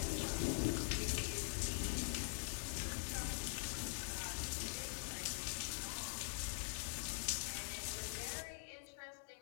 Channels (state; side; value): silent; right; digital silence